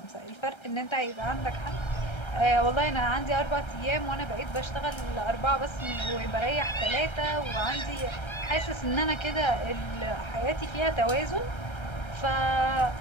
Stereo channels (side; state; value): right; late; 1.3 ms